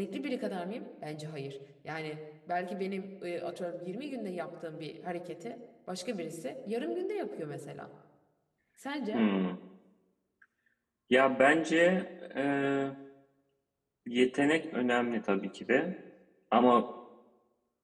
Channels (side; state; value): both; identical; correlation 1.00